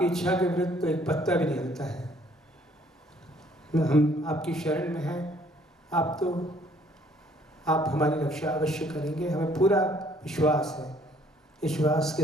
इच्छा के विरुद्ध तो एक पत्ता भी नहीं हिलता है। हम आपकी शरण में हैं, आप हमारी रक्षा अवश्य करेंगे, हमें पूरा विश्वास है। विश्वास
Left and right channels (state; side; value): normal; both; correlation 0.61